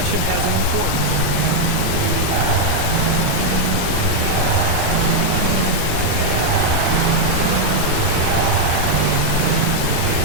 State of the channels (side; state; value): both; different; correlation 0.00